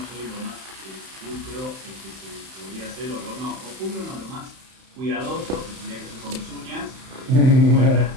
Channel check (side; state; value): left; late; 31 ms